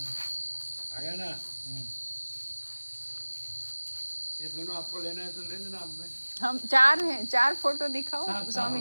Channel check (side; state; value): both; inverted; correlation -1.00